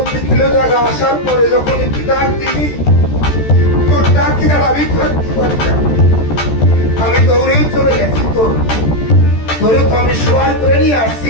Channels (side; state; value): right; late; 14 ms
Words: কিলো জায়গা আসার পরে যখন একটু ডাক দিবি তোর ডাকি আর আমি করতে পারি না আমি দৌড়েই চলে গেছি তোর ধরে তো আমি সবাই করে নিয়ে